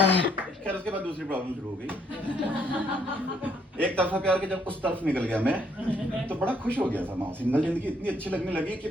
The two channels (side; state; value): both; normal; correlation 0.69